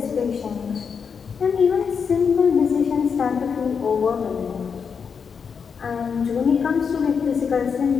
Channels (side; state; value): right; quieter; 6.2 dB